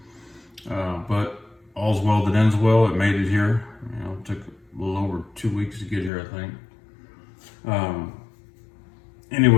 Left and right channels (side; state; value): right; drops out; at 6.1 s